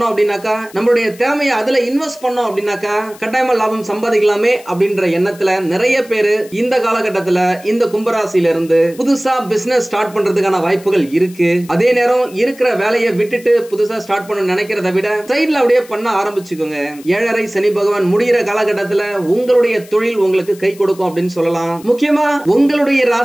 அப்படின்னாக்கா, நம்மளுடைய திறமையை அதுல இன்வெஸ்ட் பண்ணோம் அப்படின்னாக்கா கட்டாயமா லாபம் சம்பாதிக்கலாமே அப்படின்ற எண்ணத்துல நிறைய பேரு இந்த காலகட்டத்துல இந்த கும்பராசியில இருந்து புதுசா பிசினஸ் ஸ்டார்ட் பண்றதுக்கான வாய்ப்புகள் இருக்கு. அதே நேரம் இருக்கிற வேலையை விட்டுட்டு புதுசா ஸ்டார்ட் பண்ண நினைக்கிறத விட சைடுல அப்படியே பண்ண ஆரம்பிச்சுக்கோங்க. 7.5 சனி பகவான் முடிகிற காலகட்டத்துல உங்களுடைய தொழில் உங்களுக்கு கை கொடுக்கும் அப்படின்னு சொல்லலாம். முக்கியமா உங்களுடைய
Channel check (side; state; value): left; noise; hiss, 22 dB below the sound